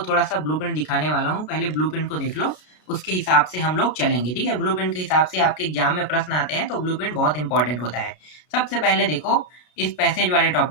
सा ब्लूप्रिंट दिखाने वाला हूं। पहले ब्लूप्रिंट को देख लो, उसके हिसाब से हम लोग चलेंगे। ठीक है, ब्लूप्रिंट के हिसाब से आपके एग्जाम में प्रश्न आते हैं, तो ब्लूप्रिंट बहुत इंपॉर्टेंट होता है। सबसे पहले देखो, इस पैसेज वाले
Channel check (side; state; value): right; late; 33 ms